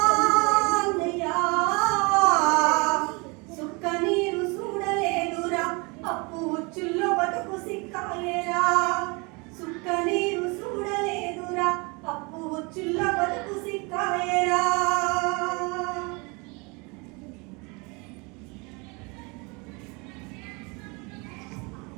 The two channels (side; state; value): left; quieter; 28.8 dB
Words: సుక్క నీరు చూడలేదురా అప్పు ఉచ్చుల్లో బతుకు సిక్కాలేరా సుక్క నీరు చూడలేదురా అప్పు ఉచ్చుల్లో బతుకు సిక్కాలేరా